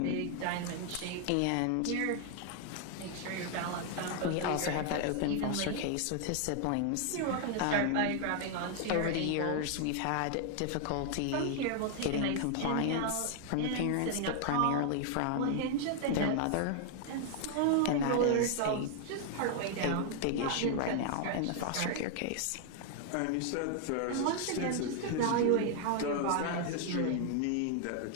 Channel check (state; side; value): different; both; correlation 0.00